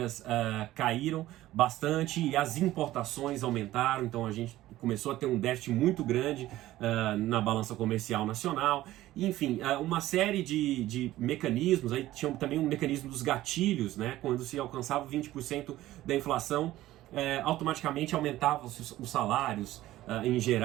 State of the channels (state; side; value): quieter; left; 15.4 dB